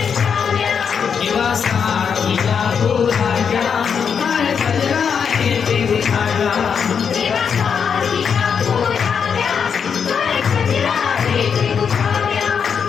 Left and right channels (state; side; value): quieter; right; 6.8 dB